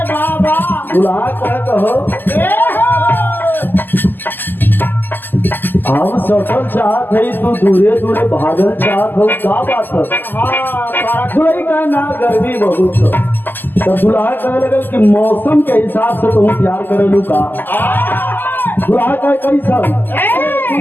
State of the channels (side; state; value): right; late; 0.090 ms